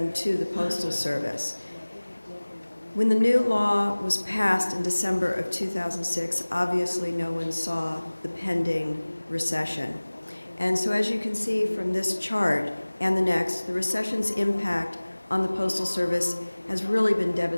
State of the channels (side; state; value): both; inverted; correlation -1.00